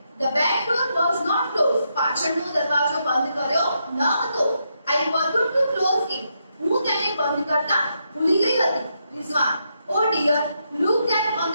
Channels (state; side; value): inverted; both; correlation -0.81